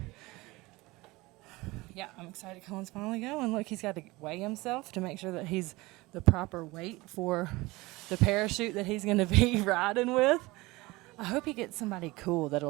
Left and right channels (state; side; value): quieter; left; 21.6 dB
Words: Yeah, I'm excited Cullen's finally going. Look, he's got to weigh himself to make sure that he's the proper weight for the parachute that he's going to be riding with. I hope he gets somebody cool